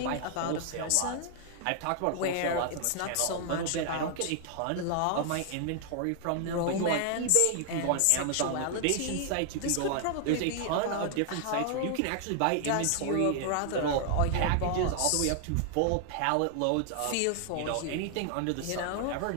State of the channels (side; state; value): both; different; correlation 0.00